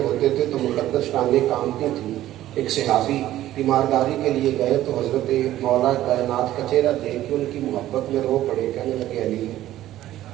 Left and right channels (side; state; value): left; quieter; 13.9 dB